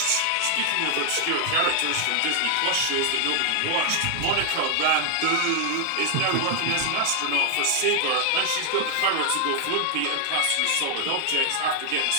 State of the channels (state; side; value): different; both; correlation 0.00